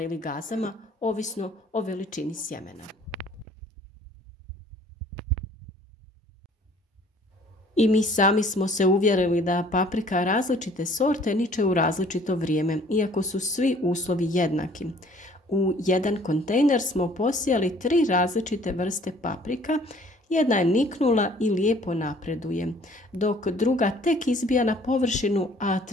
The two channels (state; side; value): normal; both; correlation 0.55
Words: ili gazama, ovisno o veličini sjemena. I mi sami smo se uvjerili da paprika različite sorte niče u različito vrijeme, iako su svi uslovi jednaki. U jedan kontejner smo posijali 3 različite vrste paprika. Jedna je niknula i lijepo napreduje, dok druga tek izbija na površinu, a